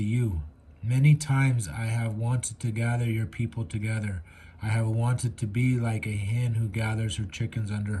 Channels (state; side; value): identical; both; correlation 1.00